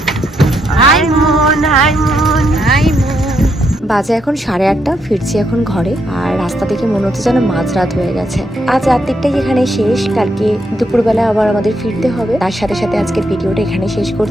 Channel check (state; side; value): normal; both; correlation 0.78